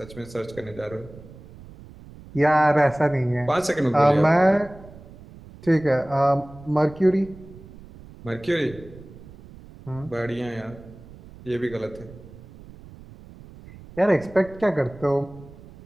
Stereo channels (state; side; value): noise; right; rumble, 19 dB below the sound